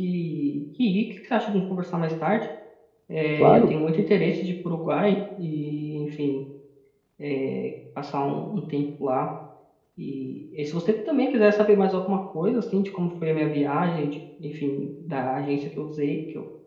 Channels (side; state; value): both; identical; correlation 1.00